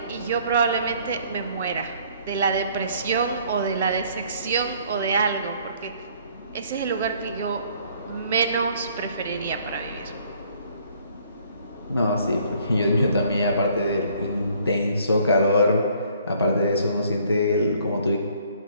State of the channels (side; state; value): both; inverted; correlation -0.60